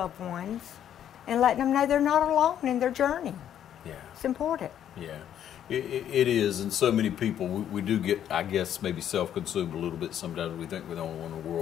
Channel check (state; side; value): quieter; right; 10.1 dB